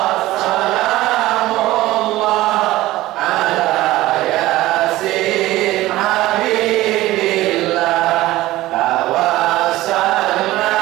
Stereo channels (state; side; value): quieter; left; 17.0 dB